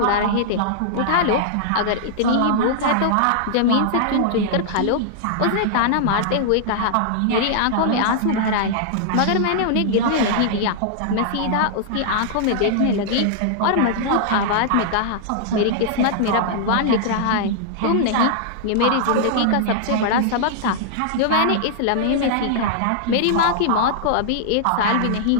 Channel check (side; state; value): both; different; correlation -0.01